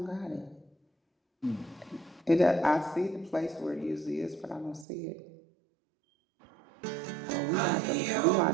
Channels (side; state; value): left; drops out; at 4.9 s